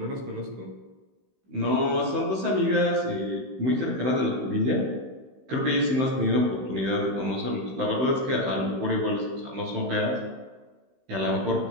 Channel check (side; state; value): left; late; 16 ms